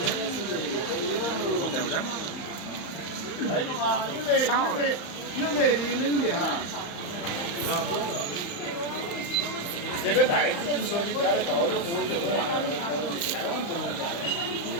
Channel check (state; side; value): late; right; 34 ms